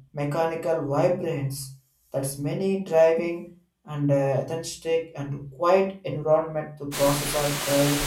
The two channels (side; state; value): both; identical; correlation 1.00